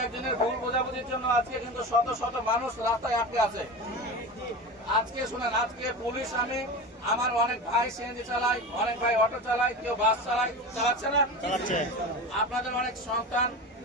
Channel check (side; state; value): both; normal; correlation 0.28